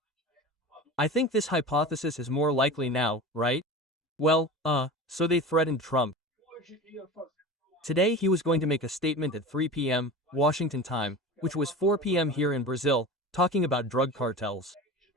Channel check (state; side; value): normal; both; correlation 0.32